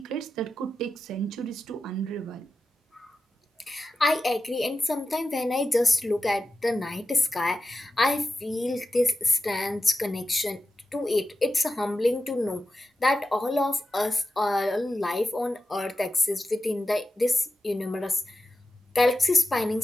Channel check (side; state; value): both; normal; correlation 0.91